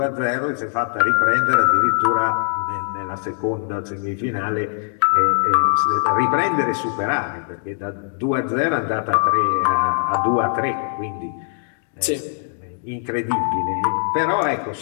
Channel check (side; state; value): right; silent; 65 dB below the other